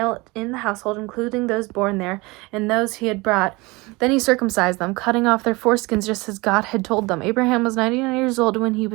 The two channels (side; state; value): left; quieter; 24.0 dB